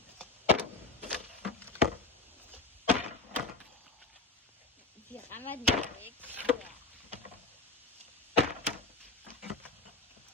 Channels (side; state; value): right; quieter; 3.2 dB